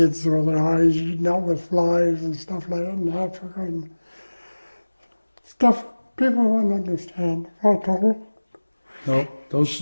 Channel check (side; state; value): both; inverted; correlation -1.00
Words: with their eyes eaten out with flies and stuff like that in Africa and stuff people wouldn't understand. No,